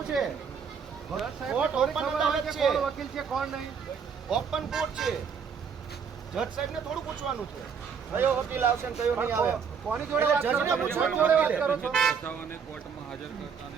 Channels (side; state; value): left; quieter; 6.5 dB